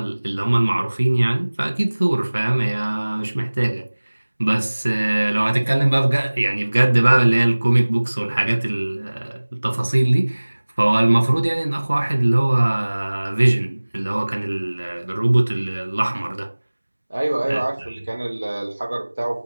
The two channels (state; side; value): inverted; both; correlation -1.00